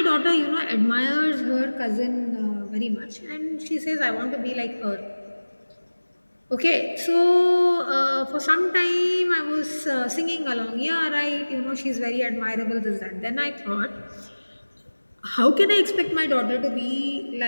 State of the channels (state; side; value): inverted; both; correlation -1.00